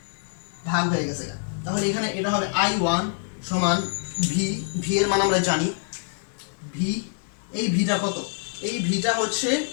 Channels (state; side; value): silent; right; 61 dB below the other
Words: তাহলে এখানে এটা হবে I1 সমান V এর মান আমরা জানি V। এই ভিটা কত? এই ভিটা হচ্ছে